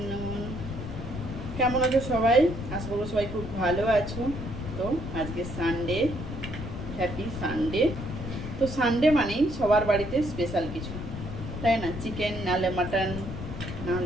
কেমন আছো সবাই? আশা করবো সবাই খুব ভালো আছো। তো আজকে সানডে, হ্যাপি সানডে। তো সানডে মানেই সবার বাড়িতে স্পেশাল কিছু, তাই না? চিকেন নাহলে মাটন,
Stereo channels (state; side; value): noise; left; rumble, 7 dB below the sound